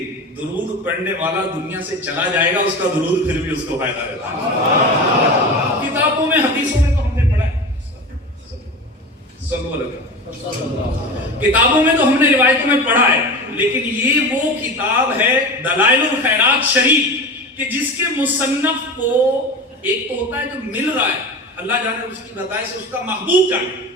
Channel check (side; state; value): both; normal; correlation 0.29